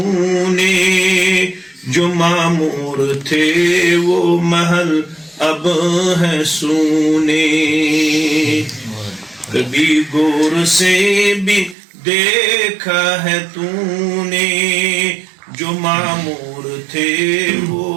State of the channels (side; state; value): left; drops out; at 11.8 s